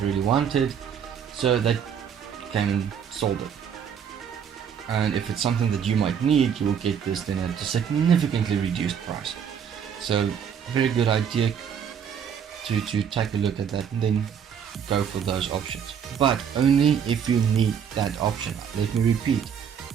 really want it, so they came and sold it. And if it's something that you might need, you will get this then at a significantly reduced price. So very good idea to take a look at that and then go for those options, but only if you need that option. Let me repeat,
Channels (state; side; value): quieter; left; 7.8 dB